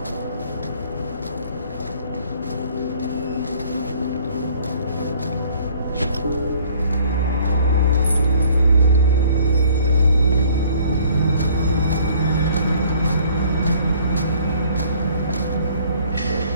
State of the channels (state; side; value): inverted; both; correlation -0.57